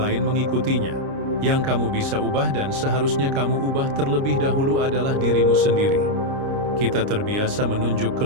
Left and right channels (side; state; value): left; late; 29 ms